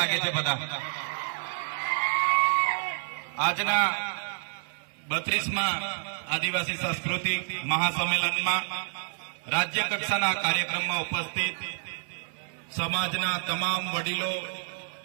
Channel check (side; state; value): left; silent; 56 dB below the other